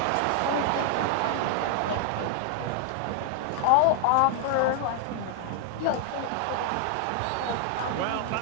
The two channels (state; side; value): different; both; correlation 0.00